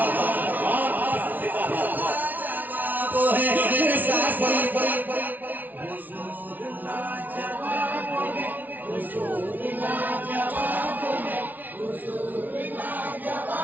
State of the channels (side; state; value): left; late; 0.080 ms